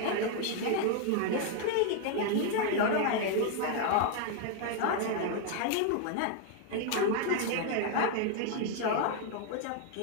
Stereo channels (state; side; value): different; both; correlation 0.00